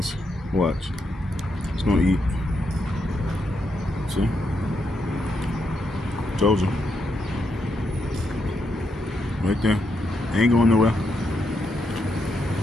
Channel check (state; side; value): normal; both; correlation 0.80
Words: Watch. It's gonna eat. See? Told you. Right there. Ain't going nowhere.